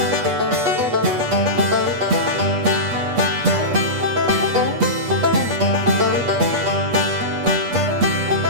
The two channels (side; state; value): left; late; 8.2 ms